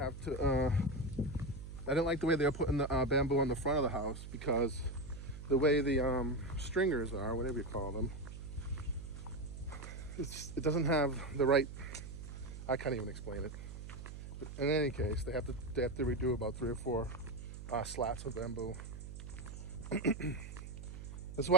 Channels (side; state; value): right; noise; hum, 10 dB below the sound